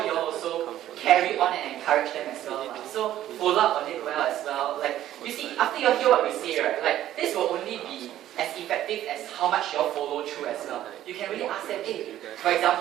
you also carry on and encourage them as well. So follow up on it well as well. Like you see, after you hear what we say, right? Like this will only be as effective as how much you follow through as well. You can really ask them, hey, for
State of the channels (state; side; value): quieter; left; 12.7 dB